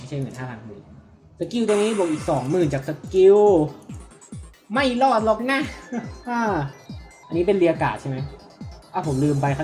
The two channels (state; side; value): identical; both; correlation 1.00